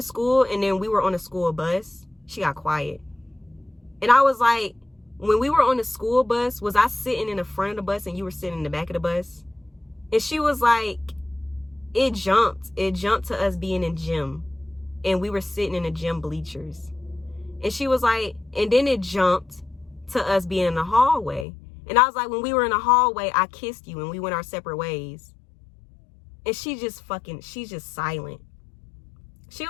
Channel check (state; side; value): drops out; right; at 21.5 s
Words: and then we were on a school bus. She got quiet. And I was like, when we were on the school bus, was I sitting in the front of the bus and you were sitting in the back of the bus? And she was like, it jumped. It jumped to us being in gym. And we were sitting in the gym bleachers. And she was like, and then it jumped to us being in the hallway. And I was like, when we were in the hallway, I kissed you and we went our separate ways. And she's just silent. She